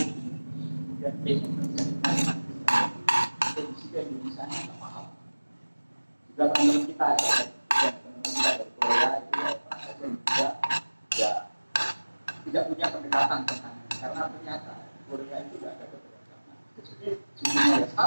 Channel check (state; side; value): inverted; both; correlation -1.00